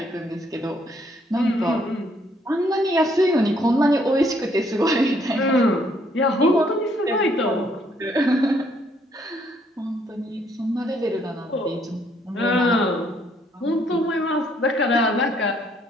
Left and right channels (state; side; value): normal; both; correlation 0.68